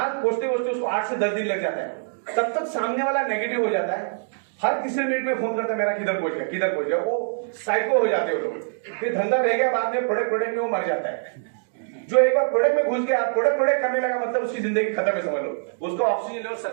पहुंचते पहुंचते उसको 8 से 10 दिन लग जाता है। तब तक सामने वाला नेगेटिव हो जाता है, हर तीसरे मिनट में फोन करता है मेरा किधर पहुंच गया, किधर पहुंच गया। वो साइको हो जाते हैं वो लोग। फिर धंधा रह गया, बाद में प्रोडक्ट में वो मर जाता है। जो एक बार प्रोडक्ट में घुस गया, प्रोडक्ट करने लगा मतलब उसकी जिंदगी खत्म है समझ लो। उसका ऑक्सीजन लेवल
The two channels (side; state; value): left; silent; digital silence